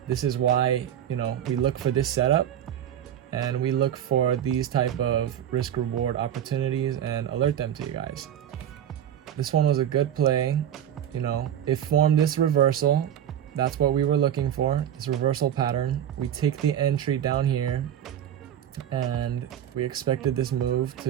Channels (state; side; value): quieter; left; 10.2 dB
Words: This is why, you know, we look for this setup, and we look for these type of risk reward opportunities and alert them to you guys. This one was a good play. You know, it formed this reversal. That's what we were looking for, this reversal pattern. We take the entry down here, and we expected this move